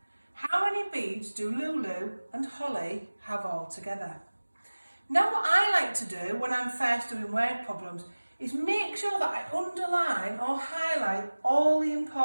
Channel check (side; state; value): both; inverted; correlation -1.00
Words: How many beads do Lulu and Holly have all together? Now what I like to do when I'm first doing word problems is make sure that I underline or highlight all the